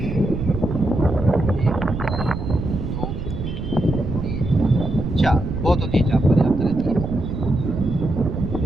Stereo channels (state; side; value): noise; right; rumble, 5 dB below the sound